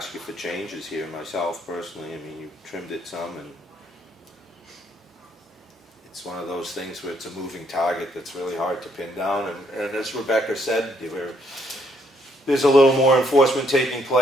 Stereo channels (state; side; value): normal; both; correlation 0.71